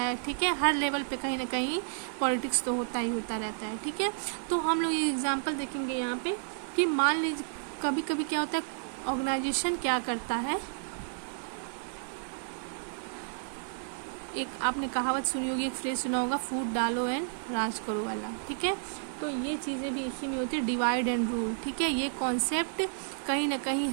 ठीक है, हर लेवल पे कहीं ना कहीं पॉलिटिक्स तो होता ही होता रहता है। ठीक है, तो हम लोग ये एग्जांपल देखेंगे यहाँ पे कि मान लीजिए कभी कभी क्या होता है, ऑर्गेनाइजेशन क्या करता है, एक आपने कहावत सुनी होगी, एक फ्रेज सुना होगा, फूट डालो एंड राज करो वाला। ठीक है, तो ये चीज़ें भी इसी में होती है, डिवाइड एंड रूल। ठीक है, ये कॉन्सेप्ट कहीं ना कहीं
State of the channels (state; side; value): silent; left; 57 dB below the other